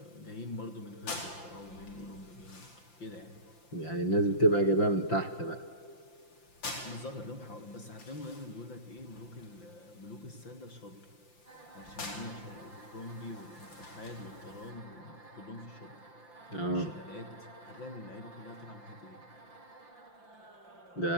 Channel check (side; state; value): right; late; 5.8 ms